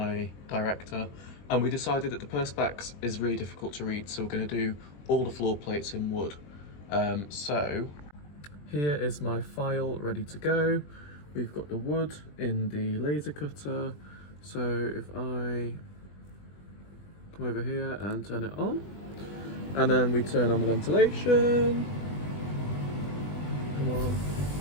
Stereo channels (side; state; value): right; late; 20 ms